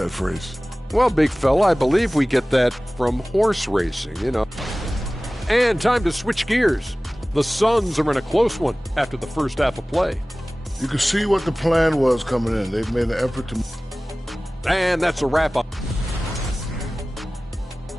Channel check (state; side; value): normal; both; correlation 0.98